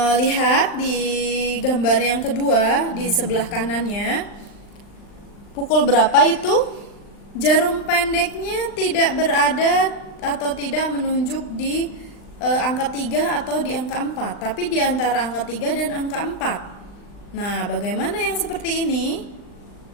lihat di gambar yang kedua di sebelah kanannya. Pukul berapa itu? Jarum pendeknya tidak berada atau tidak menunjuk di angka 3 atau di angka 4, tapi di antara angka 3 dan angka 4. Nah, bagaimana yang seperti ini?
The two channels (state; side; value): late; right; 39 ms